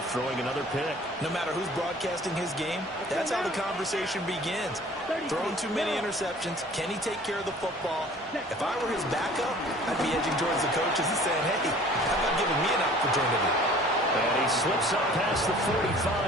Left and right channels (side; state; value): both; normal; correlation 0.49